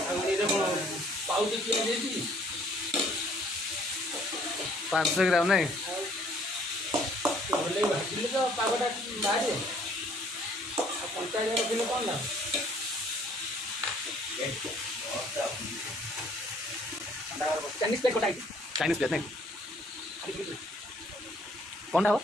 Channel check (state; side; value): normal; both; correlation 0.60